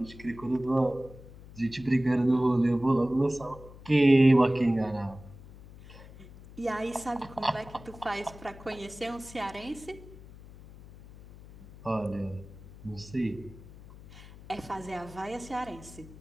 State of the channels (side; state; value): left; noise; hum, 18 dB below the sound